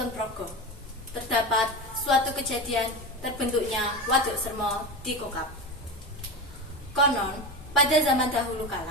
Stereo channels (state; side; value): normal; both; correlation 0.23